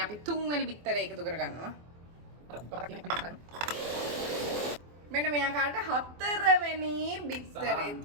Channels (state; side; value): late; left; 24 ms